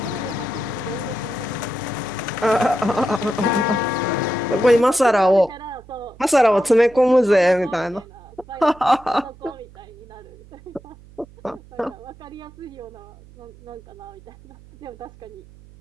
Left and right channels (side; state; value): right; noise; hum, 22 dB below the sound